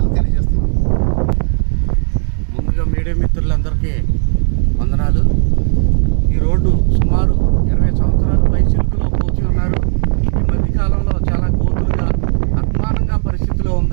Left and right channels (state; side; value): silent; left; 70 dB below the other